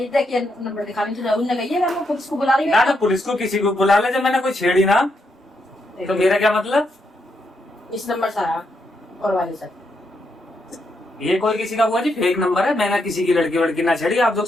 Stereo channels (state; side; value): normal; both; correlation 0.80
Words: देखिए नंबर दिखाने तो उन्होंने कही है, मैं पुलिस को बुला रही ना हूँ। पुलिस को किसी को बुला ले, जब मैंने कोई छेड़ी ना तो मेरा क्या मतलब? इस नंबर से आया और वाले से। ये कोई किसी का हुआ जी फेक नंबर है, मैंने किसी की लड़की वड़की ना छेड़ी, आप लोग